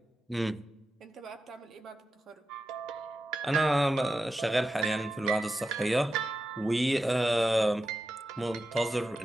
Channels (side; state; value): both; normal; correlation 0.90